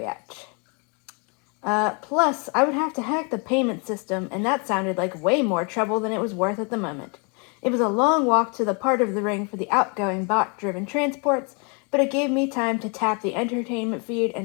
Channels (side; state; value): right; quieter; 34.4 dB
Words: at? Plus, I would have to hack the payment system, and that sounded like way more trouble than it was worth at the moment. It was a long walk to the part of the ring for the outgoing bot-driven transports, but it gave me time to tap the entertainment feed